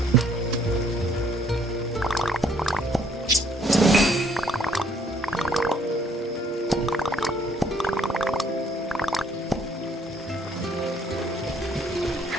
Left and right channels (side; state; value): both; normal; correlation 0.65